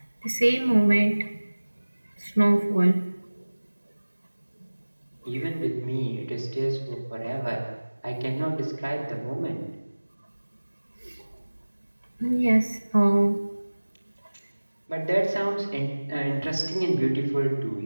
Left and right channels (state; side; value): inverted; both; correlation -1.00